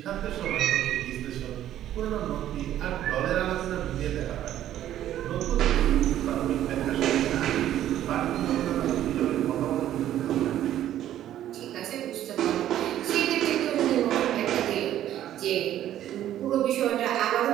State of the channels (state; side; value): quieter; left; 12.1 dB